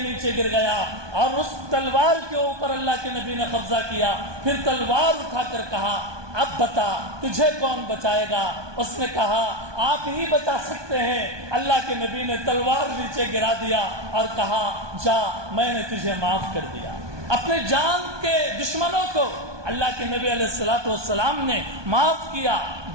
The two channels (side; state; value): left; late; 1.2 ms